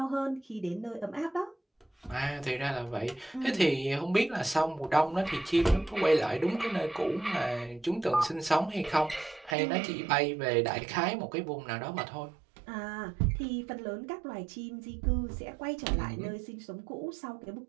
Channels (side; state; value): left; drops out; at 9.6 s